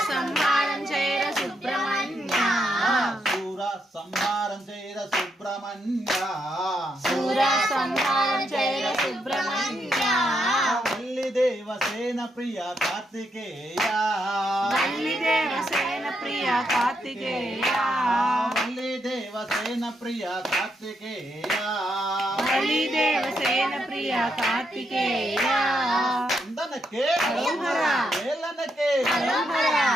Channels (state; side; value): normal; both; correlation 0.79